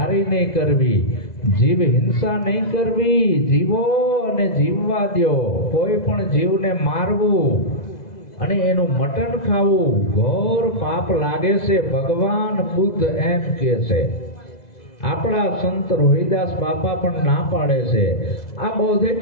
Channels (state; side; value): late; right; 2.0 ms